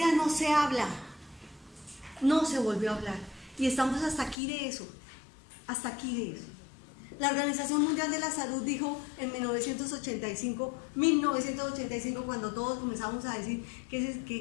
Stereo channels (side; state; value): right; drops out; at 4.4 s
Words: no se habla. No se volvió a hablar. Y estamos hasta aquí de eso. Hasta aquí de eso. La Organización Mundial de la Salud dijo en 1985, cuando todos comenzamos a decir ¿qué